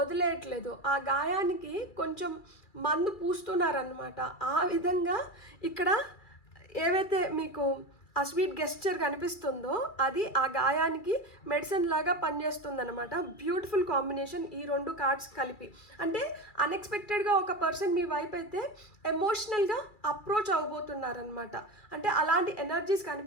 ఆ గాయానికి కొంచెం మందు పూస్తున్నారనమాట. ఆ విధంగా ఇక్కడ ఏవైతే మీకు ఆ స్వీట్ గెస్చర్ కనిపిస్తుందో అది ఆ గాయానికి మెడిసిన్ లాగా పనిచేస్తుందన్నమాట. బ్యూటిఫుల్ కాంబినేషన్ ఈ 2 కార్డ్స్ కలిపి. అంటే అన్ఎక్స్పెక్టెడ్గా ఒక పర్సన్ మీ వైపు అయితే ఎమోషనల్గా అప్రోచ్ అవ్వబోతున్నారనమాట. అంటే అలాంటి ఎనర్జీస్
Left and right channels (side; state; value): right; late; 2.3 ms